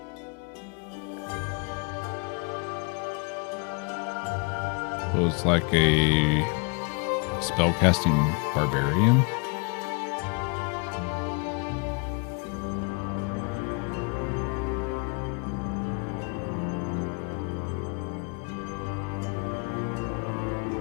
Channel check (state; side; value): quieter; right; 33.4 dB